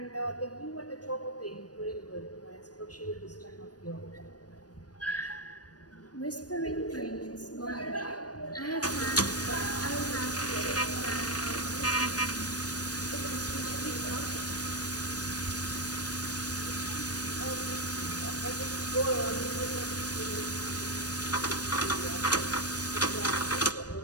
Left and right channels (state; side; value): late; right; 0.69 ms